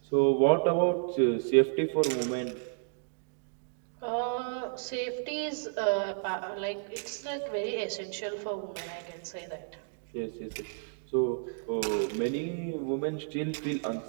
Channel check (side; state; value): left; silent; digital silence